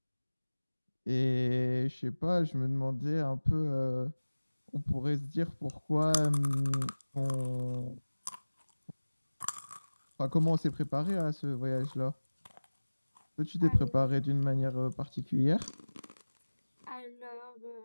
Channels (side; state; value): both; inverted; correlation -1.00